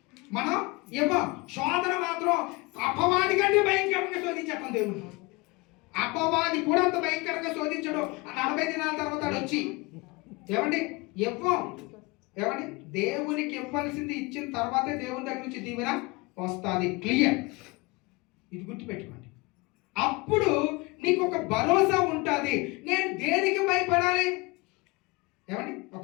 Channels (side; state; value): right; quieter; 25.2 dB